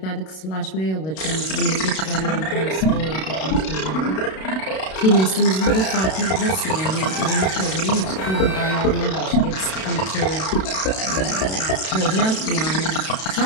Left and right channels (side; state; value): right; late; 32 ms